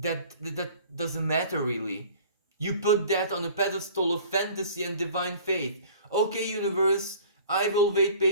doesn't matter really. You put that on a pedestal of fantasy and divine faith. Okay, universe, I will wait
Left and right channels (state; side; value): inverted; both; correlation -0.47